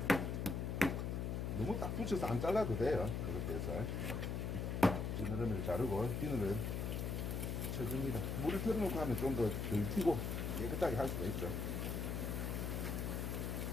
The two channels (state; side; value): noise; left; hum, 1 dB below the sound